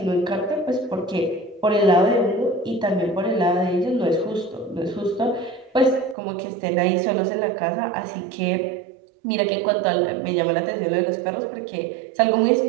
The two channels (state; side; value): drops out; left; at 6.2 s